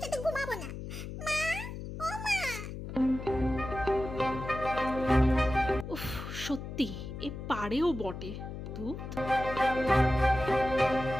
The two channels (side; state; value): left; noise; hum, 8 dB below the sound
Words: সাথে ঘুমাবো না। মা, ও মা। উফ, সত্যি এ পারেও বটে। তুই